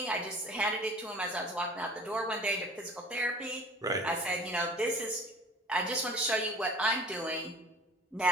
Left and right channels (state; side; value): normal; both; correlation 0.45